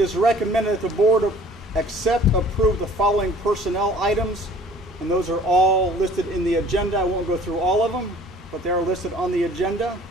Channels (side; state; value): both; normal; correlation 0.51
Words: recommended that the board approve the following personnel items, and those are all listed in the agenda. I won't go through all of them, but they are listed on the agenda.